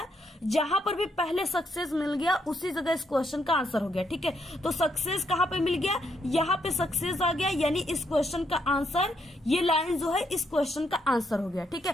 जहां पर भी पहले सक्सेस मिल गया उसी जगह इस क्वेश्चन का आंसर हो गया। ठीक है, तो सक्सेस कहां पे मिल गया, यहाँ पे सक्सेस आ गया, यानी इस क्वेश्चन का आंसर, ये लाइन जो है इस क्वेश्चन का आंसर हो गया। ठीक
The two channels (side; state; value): both; normal; correlation 0.76